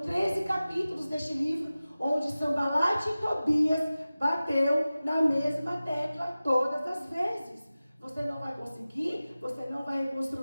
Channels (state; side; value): inverted; both; correlation -0.97